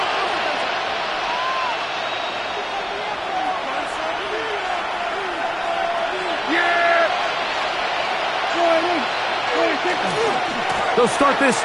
They'll start this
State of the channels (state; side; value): identical; both; correlation 1.00